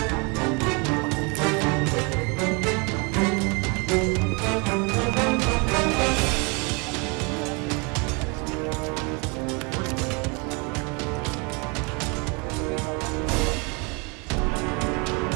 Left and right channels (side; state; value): left; quieter; 31.3 dB